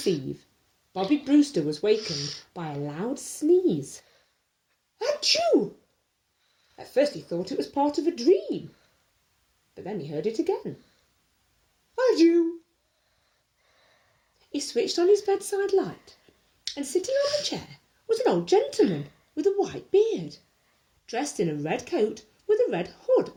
Eve, Bobby Brewster was wakened by a loud sneeze. Achoo! At first he thought it was part of a dream, but then he heard it again. Achoo! He switched on his bedside light, and sitting on the chair was an old gentleman with a white beard, dressed in a red coat with a red hood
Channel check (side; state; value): both; identical; correlation 1.00